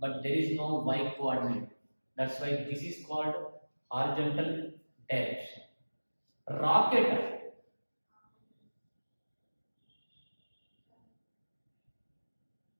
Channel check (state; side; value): inverted; both; correlation -1.00